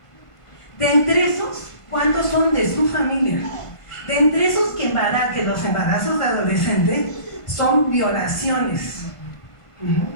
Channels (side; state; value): right; late; 1.5 ms